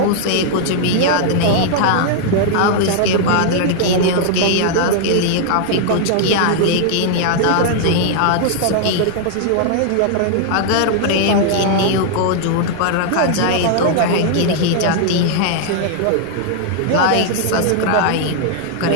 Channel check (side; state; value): both; different; correlation 0.00